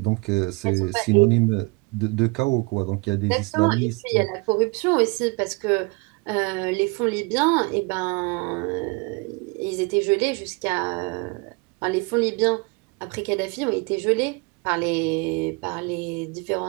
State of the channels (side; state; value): left; quieter; 29.1 dB